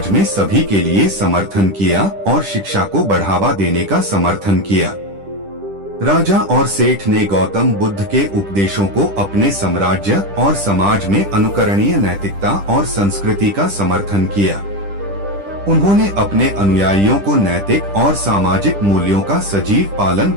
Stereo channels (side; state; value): left; late; 10 ms